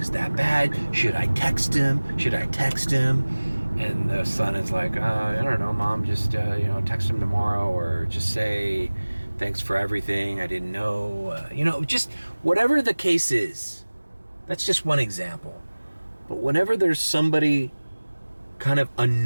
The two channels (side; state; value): both; inverted; correlation -1.00